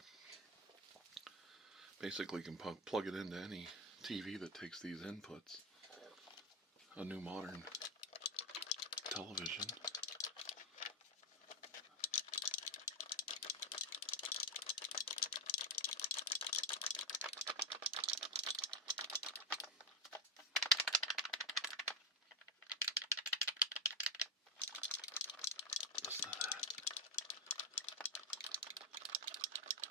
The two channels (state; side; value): normal; both; correlation 0.12